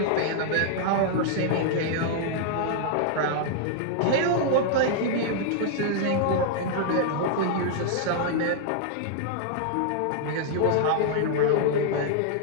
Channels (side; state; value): both; different; correlation -0.01